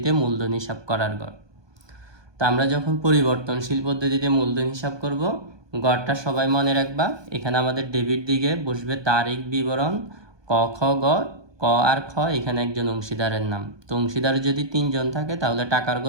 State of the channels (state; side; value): late; left; 1.2 ms